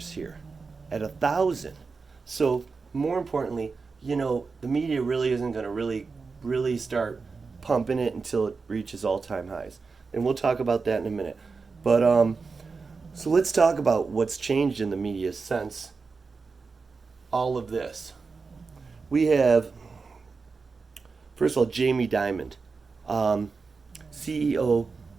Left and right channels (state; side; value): quieter; left; 4.6 dB